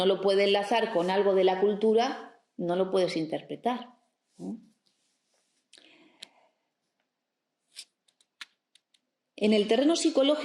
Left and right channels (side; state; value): both; identical; correlation 1.00